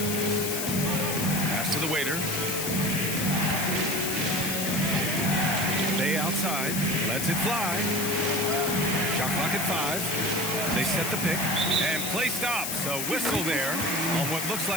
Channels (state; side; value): noise; left; hiss, 2 dB below the sound